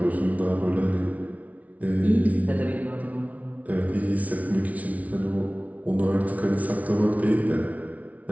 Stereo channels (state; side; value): late; left; 0.070 ms